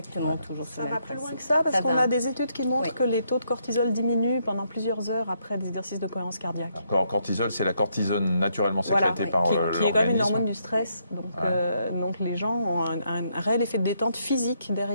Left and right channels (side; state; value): both; inverted; correlation -0.75